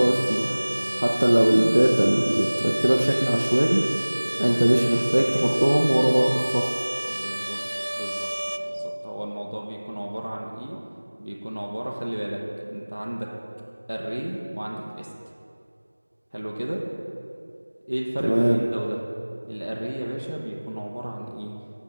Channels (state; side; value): inverted; both; correlation -1.00